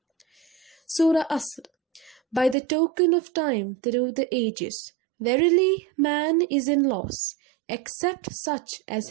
Surah Asr. By the token of time through the ages, verily man is in loss, except such as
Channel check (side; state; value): left; drops out; at 2.6 s